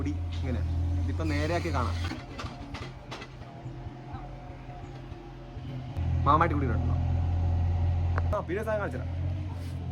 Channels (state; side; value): identical; both; correlation 1.00